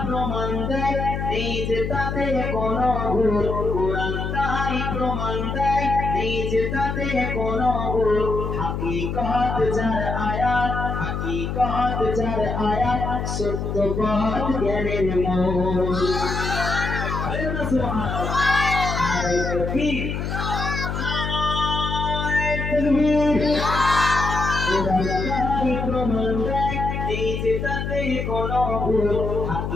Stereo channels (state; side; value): noise; left; hum, 3 dB below the sound